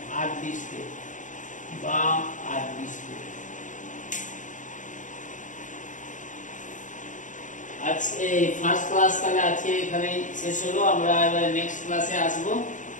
বা আর বিস্কুট। আজকে ফার্স্ট ক্লাস তাহলে আজকে এখানে শেষ হলো। আমরা এবার নেক্সট ক্লাসে আসবো।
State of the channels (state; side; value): late; right; 0.37 ms